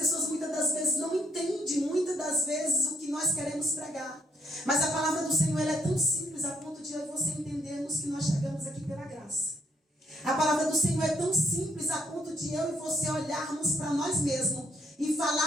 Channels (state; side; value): normal; both; correlation 0.71